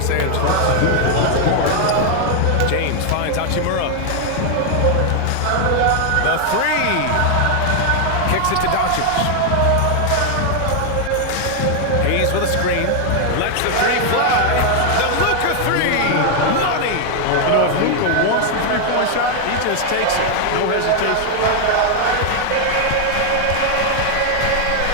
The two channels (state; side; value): different; both; correlation 0.00